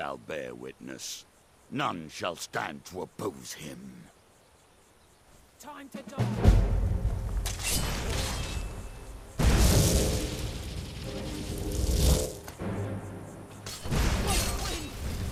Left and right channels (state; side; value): identical; both; correlation 1.00